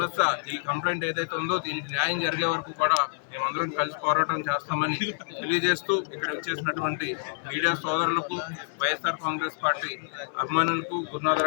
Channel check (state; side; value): silent; right; digital silence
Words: ఈ కంప్లైంట్ ఏదైతే ఉందో దీనికి న్యాయం జరిగే వరకు కూడా మేమందరం కలిసి పోరాటం చేస్తామని తెలియజేస్తూ ఇక్కడ వచ్చేసినటువంటి మీడియా సోదరులకు వైఎస్ఆర్ కాంగ్రెస్ పార్టీ అభిమానులకు